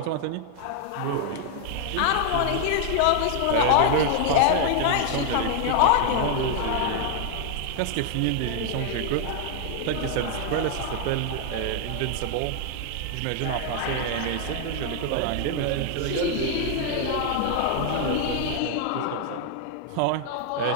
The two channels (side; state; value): both; different; correlation 0.00